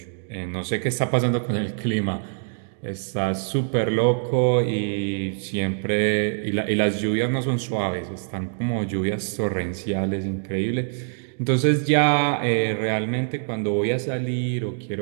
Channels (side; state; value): left; silent; digital silence